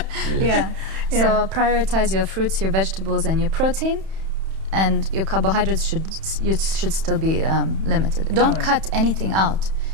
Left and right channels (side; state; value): left; late; 31 ms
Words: yeah. So prioritize your fruits, your vegetables, and your protein, and your carbohydrates should still be limited. Don't cut anything out.